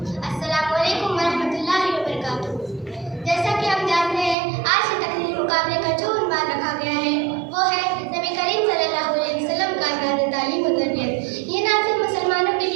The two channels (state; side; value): drops out; left; at 4.4 s